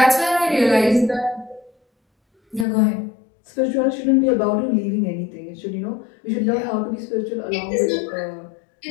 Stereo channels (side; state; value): right; drops out; at 2.7 s